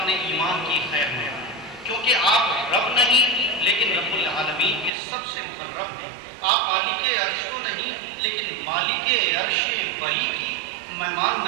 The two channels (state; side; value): drops out; left; at 4.9 s